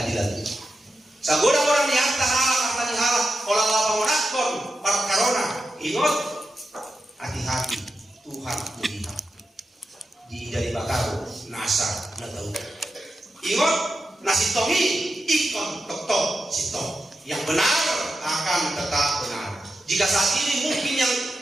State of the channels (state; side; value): normal; both; correlation 0.90